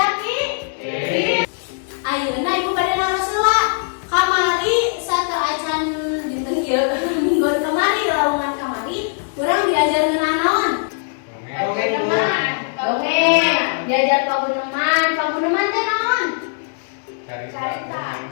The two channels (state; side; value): silent; right; digital silence